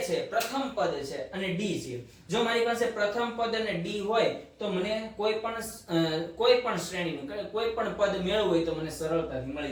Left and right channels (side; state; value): both; identical; correlation 1.00